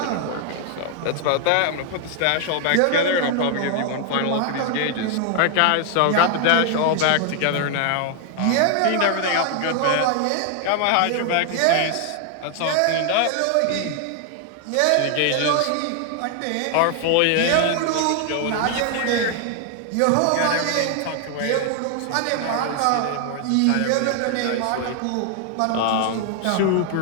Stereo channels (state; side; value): different; both; correlation 0.00